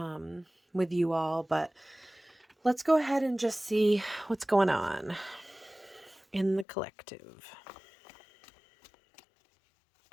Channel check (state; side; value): drops out; right; at 6.7 s